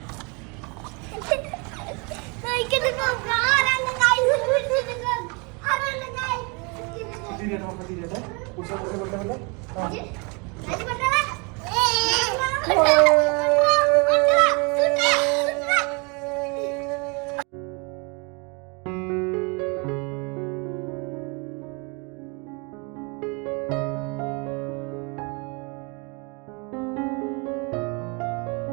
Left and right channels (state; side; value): quieter; left; 31.6 dB